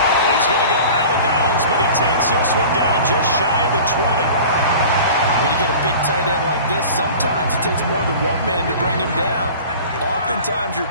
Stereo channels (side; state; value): both; inverted; correlation -0.40